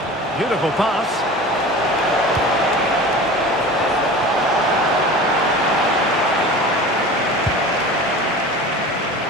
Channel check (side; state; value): both; normal; correlation 0.36